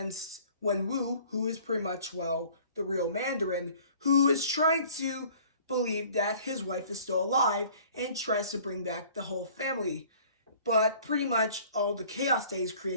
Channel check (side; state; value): both; inverted; correlation -0.51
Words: Wenwu, who is pretty much, well, the real Mandarin, who is trying to believe that his wife is still alive and tries to bring back the whole family. But pretty much all the chaos that he's